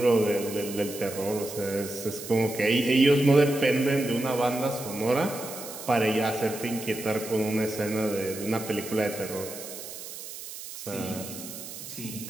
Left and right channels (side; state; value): right; noise; hiss, 11 dB below the sound